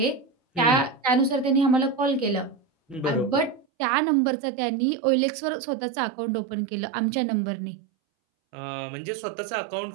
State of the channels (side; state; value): left; drops out; at 3.7 s